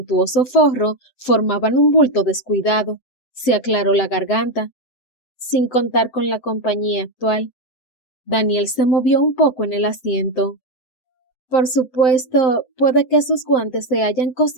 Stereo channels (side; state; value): right; late; 7.9 ms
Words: forro formaban un bulto descuidado. Se aclaró la garganta, sin contar con la compañía actual. Daniel se movió un poco en el asiento. Por supuesto, puede que sus guantes se hayan